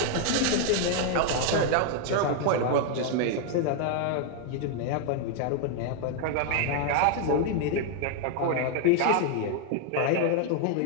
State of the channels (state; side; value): different; both; correlation 0.00